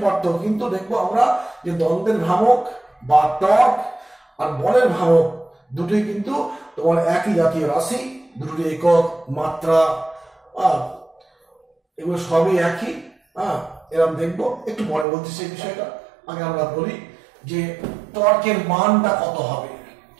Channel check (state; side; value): drops out; left; at 15.1 s